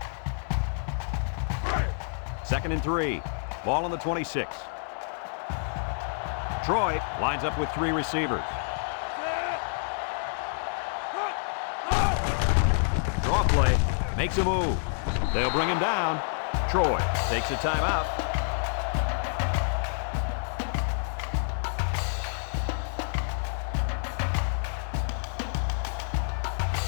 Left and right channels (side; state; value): right; silent; digital silence